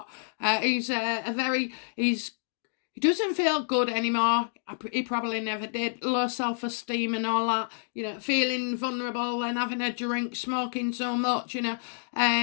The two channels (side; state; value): right; silent; digital silence